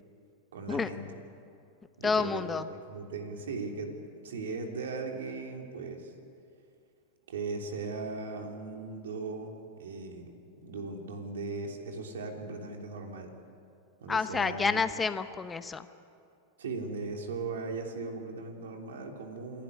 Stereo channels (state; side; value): normal; both; correlation 0.37